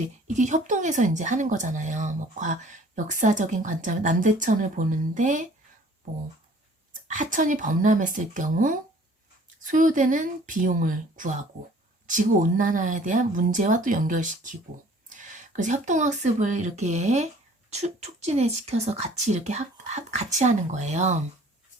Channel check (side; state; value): both; normal; correlation 0.53